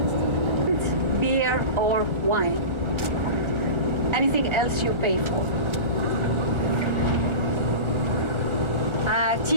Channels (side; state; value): left; late; 1.3 ms